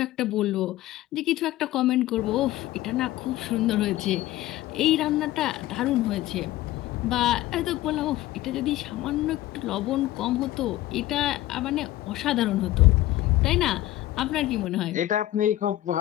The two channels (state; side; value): quieter; right; 15.6 dB